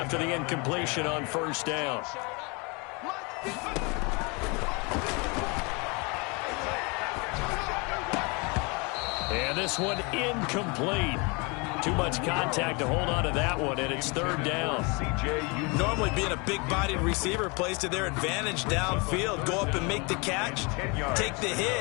the incompletion on 1st down. And this one incomplete. Too much contact to hold on to that one, and it's 3rd down. Normally being a big-bodied receiver plays to their advantage downfield. Go up and make the catch, take the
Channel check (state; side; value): quieter; right; 29.6 dB